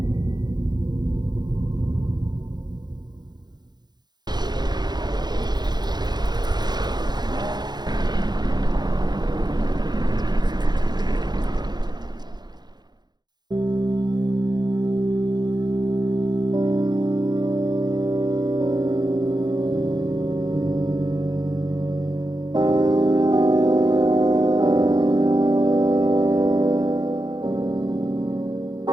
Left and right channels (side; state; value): left; late; 0.20 ms